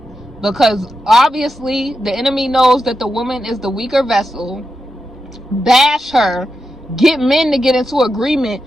because obviously the enemy knows that the woman is the weaker vessel. Bash her, get men to get into agreement.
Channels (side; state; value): both; normal; correlation 0.88